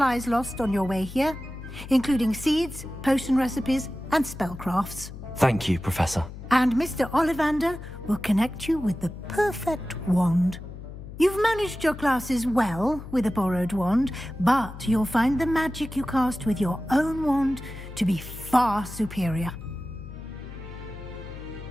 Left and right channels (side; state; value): left; noise; hum, 12 dB below the sound